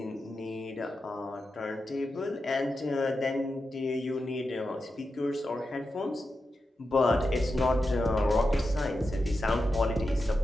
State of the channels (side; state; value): both; normal; correlation 0.90